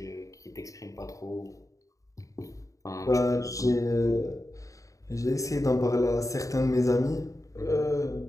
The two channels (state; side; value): late; right; 0.16 ms